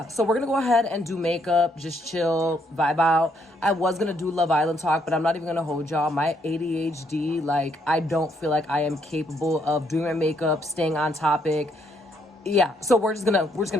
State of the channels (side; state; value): both; normal; correlation 0.72